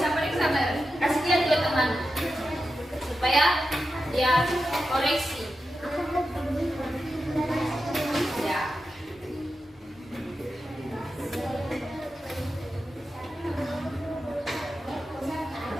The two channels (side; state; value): both; normal; correlation 0.90